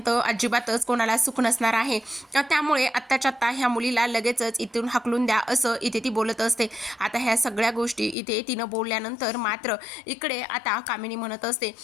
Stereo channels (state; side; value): drops out; right; at 8.2 s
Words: अजिबातच कोणाला सुख नसणार आहे, त्यामुळे आत्ताच्या आत्ता ह्या मुलीला लगेचच इथून हकलून द्या असं इथे ती बोलत असते. आता ह्या सगळ्या गोष्टी इथे तिनं बोलल्यानंतर मात्र इकडे आता कामिनी म्हणत असते,